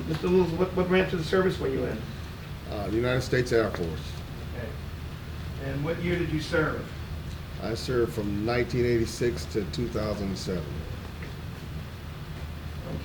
Mr. Littles, what branch of the service were you in? The United States Air Force. Okay. And what year did you serve? I served from 1986 to 2007.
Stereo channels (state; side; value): identical; both; correlation 1.00